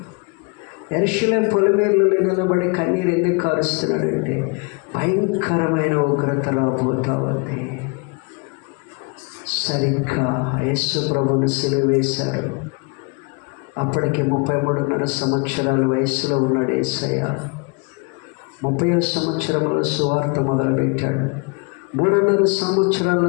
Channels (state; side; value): quieter; right; 32.1 dB